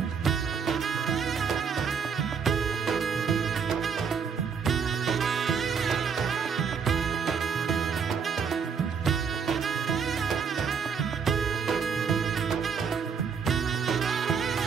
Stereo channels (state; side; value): quieter; left; 6.4 dB